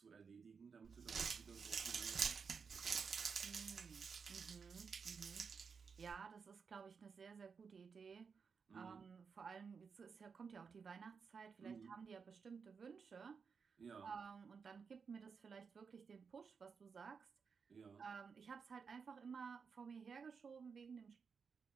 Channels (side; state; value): left; quieter; 5.7 dB